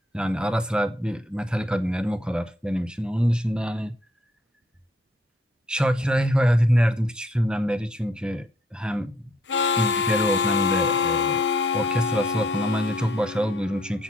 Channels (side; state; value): both; normal; correlation 0.67